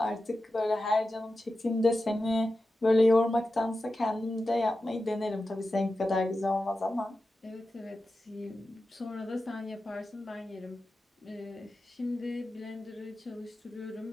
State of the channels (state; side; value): normal; both; correlation 0.92